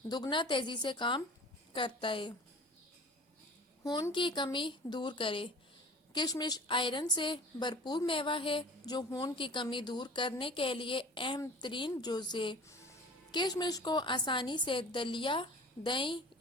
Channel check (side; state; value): both; normal; correlation 0.42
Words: دگنا تیزی سے کام کرتا ہے۔ خون کی کمی دور کرے۔ کشمش آئرن سے بھرپور میوہ ہے جو خون کی کمی دور کرنے کے لیے اہم ترین جز ہے۔ کشمش کو آسانی سے دلیا، دہی